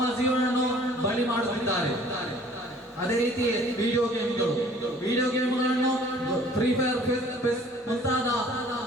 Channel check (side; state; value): both; normal; correlation 0.53